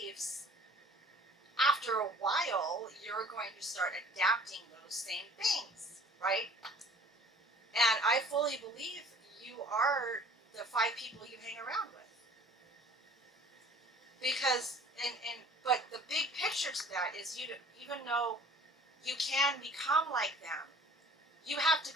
after a while, you're going to start adapting those same things, right? And I fully believe you are the 5 people you hang around with. Because, but the big picture to that is even though you can become like them, you have to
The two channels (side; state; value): both; normal; correlation 0.50